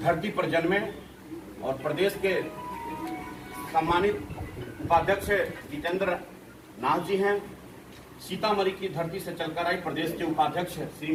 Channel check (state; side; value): identical; both; correlation 1.00